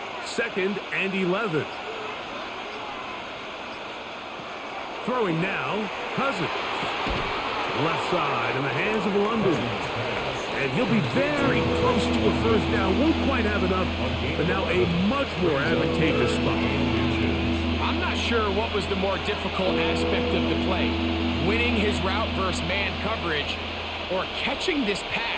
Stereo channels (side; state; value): both; identical; correlation 1.00